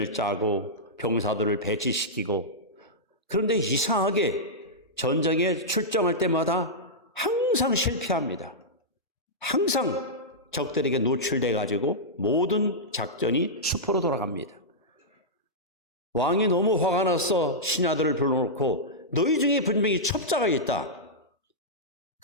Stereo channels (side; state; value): both; normal; correlation -0.10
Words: 짜고 병사들을 배치시키고, 그런데 이상하게 전쟁에 출정할 때마다 항상 실패합니다. 항상 적들에게 노출돼 가지고 모든 작전이 수포로 돌아갑니다. 왕이 너무 화가 나서 신하들을 불러놓고 너희 중에 분명히 첩자가 있다.